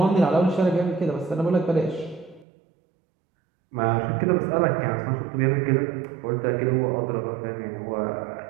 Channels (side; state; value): left; drops out; at 2.5 s